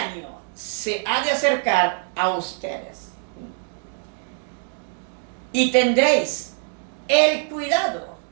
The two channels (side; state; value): left; silent; 57 dB below the other